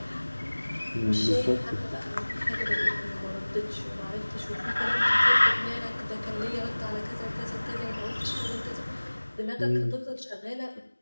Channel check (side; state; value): both; inverted; correlation -1.00